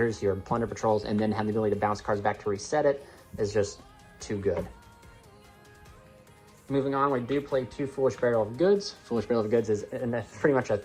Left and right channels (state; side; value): identical; both; correlation 1.00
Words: your Plunder Patrols, and then having the ability to bounce cards back to reset it is just too good. Moving on, we do play 2 Foolish Barrel of Goods. Foolish Barrel of Goods is pretty much a